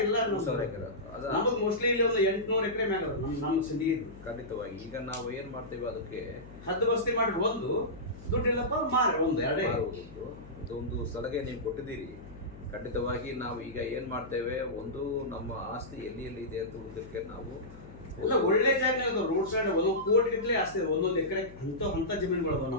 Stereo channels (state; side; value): noise; left; hum, 18 dB below the sound